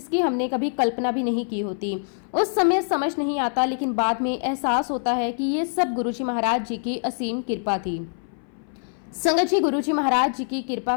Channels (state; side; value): silent; right; 59 dB below the other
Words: हमने कभी कल्पना भी नहीं की होती। उस समय समझ नहीं आता, लेकिन बाद में एहसास होता है कि ये सब गुरुजी महाराज जी की असीम कृपा थी। संगत जी, गुरुजी महाराज जी की कृपा